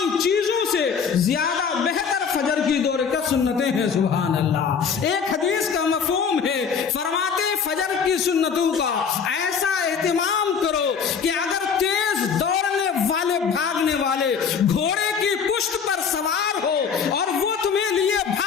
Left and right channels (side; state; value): right; quieter; 6.4 dB